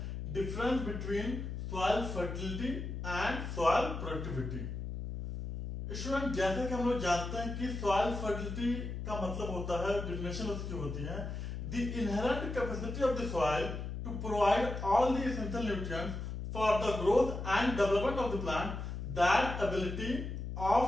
difference between soil fertility and soil productivity. Student, जैसे कि हम लोग जानते हैं कि सॉइल फर्टिलिटी का मतलब होता है, डेफिनेशन उसकी होती है, the inherent capacity of the soil to provide all the essential nutrients for the growth and development of the plant. That ability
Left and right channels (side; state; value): left; noise; hum, 5 dB below the sound